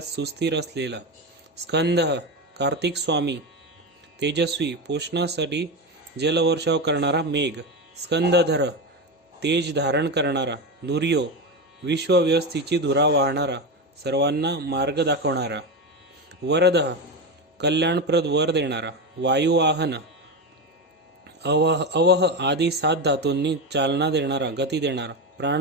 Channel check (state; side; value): normal; both; correlation 0.17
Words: सुस्थिर असलेला. स्कंद कार्तिक स्वामी. तेजस्वी पोषणासाठी जलवर्षाव करणारा मेघ. स्कंदधर तेज धारण करणारा. दुर्यो विश्वव्यवस्थेची धुरा वाहणारा. सर्वांना मार्ग दाखवणारा. वरद कल्याणप्रद वर देणारा. वायुवाहन अवह आदी 7 धातूंनी चालना देणारा गती देणारा.